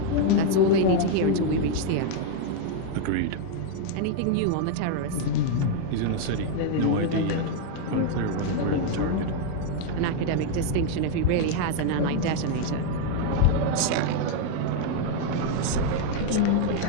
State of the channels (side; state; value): both; different; correlation 0.00